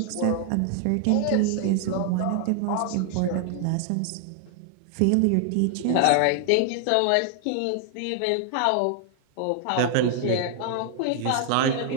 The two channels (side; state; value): both; different; correlation 0.00